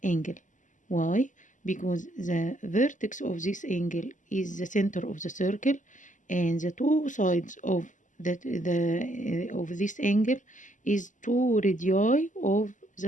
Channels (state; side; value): late; right; 0.37 ms